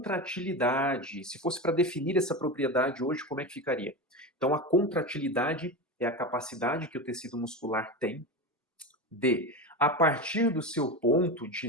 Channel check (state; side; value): normal; both; correlation 0.22